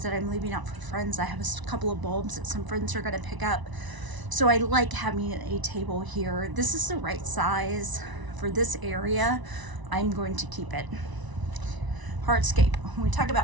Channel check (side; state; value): left; late; 1.0 ms